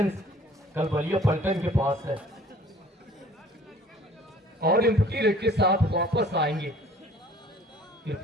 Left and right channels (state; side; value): normal; both; correlation 0.53